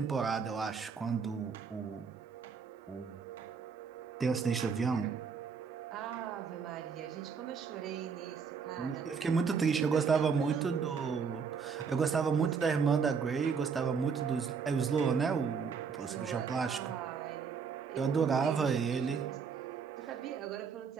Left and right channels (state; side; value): quieter; left; 5.9 dB